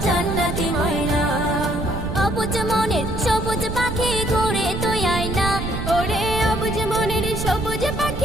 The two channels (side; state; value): right; noise; rumble, 5 dB below the sound